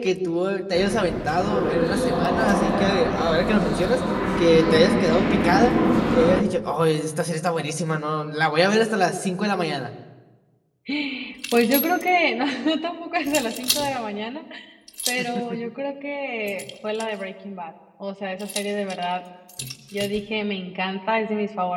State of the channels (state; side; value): identical; both; correlation 1.00